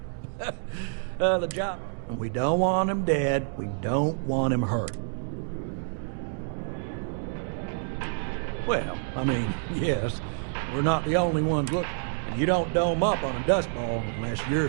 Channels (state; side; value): silent; left; digital silence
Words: of the job. And we don't want him dead. We don't want him hurt. Well, I mean, yes, we're not the only ones looking. And you don't dome up on a dust ball unless you're